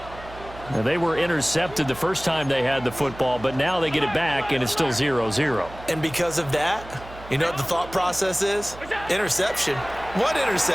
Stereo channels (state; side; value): noise; right; hum, 16 dB below the sound